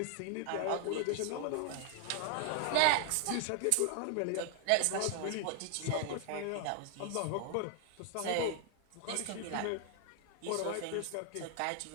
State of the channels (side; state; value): both; different; correlation 0.00